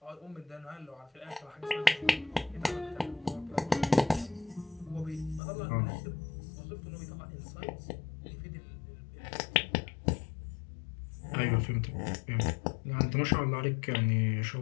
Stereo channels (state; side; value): drops out; right; at 5.4 s